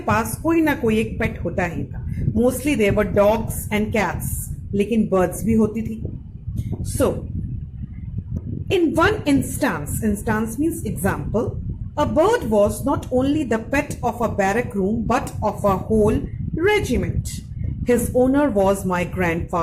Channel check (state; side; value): identical; both; correlation 1.00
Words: पास कोई ना कोई एक पेट होता ही था. Mostly there were dogs and cats, लेकिन बर्ड्स भी होती थी. So in one instance means example, a bird was not only the pet of a barrack room but of a whole regiment. His owner was my